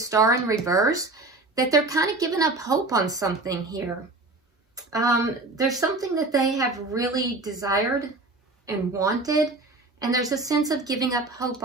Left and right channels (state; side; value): quieter; left; 3.1 dB